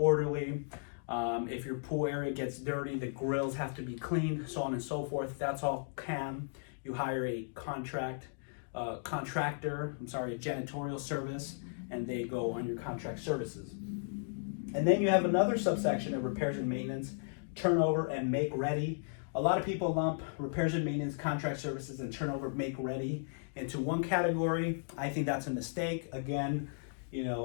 If your pool area gets dirty, the grills have to be cleaned, so on and so forth. That's all CAM. You hire a contractor, a janitorial service, and they go on your contract services. And then you have another subsection of repairs and maintenance, turnover and make ready. A lot of people lump repairs and maintenance, contract services, and turnover make ready into one category. I think that's a mistake. Again, you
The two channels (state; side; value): silent; right; digital silence